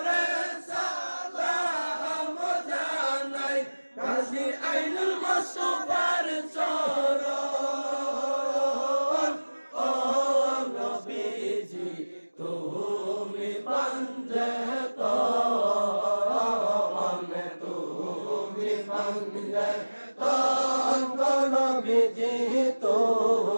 সালাম জানাই গাজী আইনুল মুস্তাফার চরণ। ও নবীজি তুমি বন্দে নবীজি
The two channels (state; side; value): inverted; both; correlation -1.00